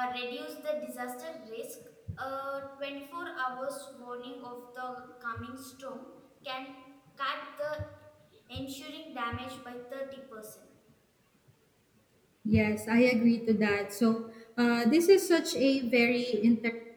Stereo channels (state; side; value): identical; both; correlation 1.00